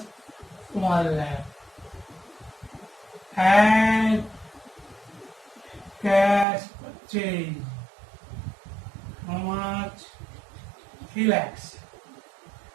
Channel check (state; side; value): drops out; left; at 6.5 s